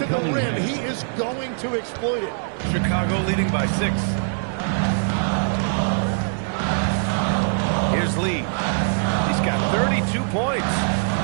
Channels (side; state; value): left; silent; 63 dB below the other